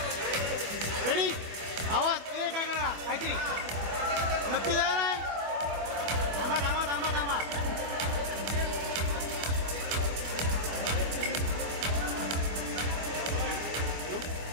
रेडी, आवाज काय करा काहीतरी नक्की द्या.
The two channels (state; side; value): late; left; 25 ms